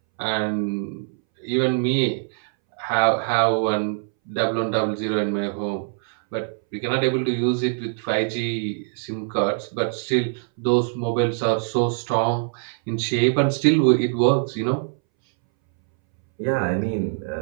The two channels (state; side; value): silent; left; 62 dB below the other